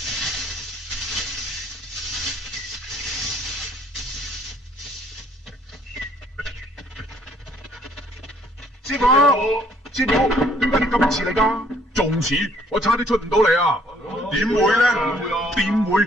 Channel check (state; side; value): normal; both; correlation 0.62